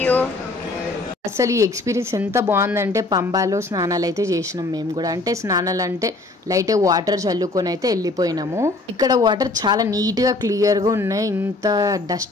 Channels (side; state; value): right; quieter; 3.1 dB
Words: you. అసలు ఈ ఎక్స్పీరియన్స్ ఎంత బాగుందంటే, పంబాలో స్నానాలు అయితే చేసినాం మేము కూడా. అంటే స్నానాలు అంటే లైట్ వాటర్ చల్లుకొని అయితే వెళ్ళిపోయినాము. ఇక్కడ వాటర్ చాలా నీట్ గా క్లియర్ గా ఉన్నాయి, ఇంత